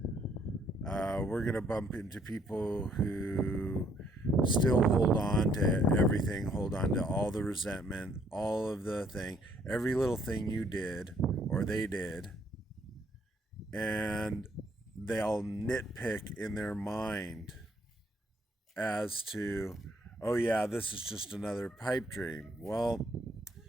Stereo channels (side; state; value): both; normal; correlation 0.67